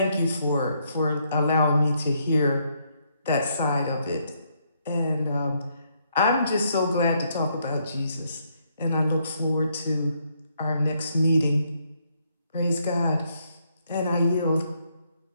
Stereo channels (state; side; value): inverted; both; correlation -0.74